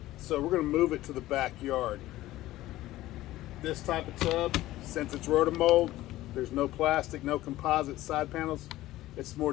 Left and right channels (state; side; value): quieter; right; 16.0 dB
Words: So we're going to move it to the backyard. This type of tub, since it's rotomold, there's no plastic, no composite side panels. It's